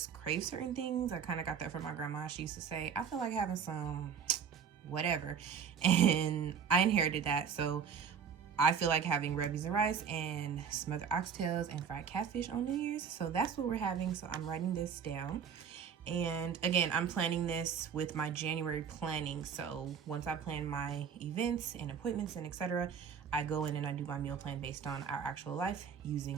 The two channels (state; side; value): quieter; left; 7.1 dB